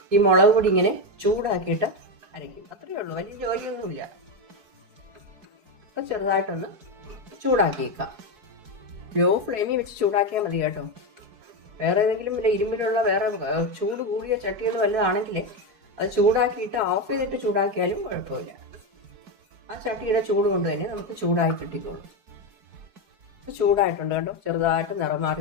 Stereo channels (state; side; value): late; left; 4.7 ms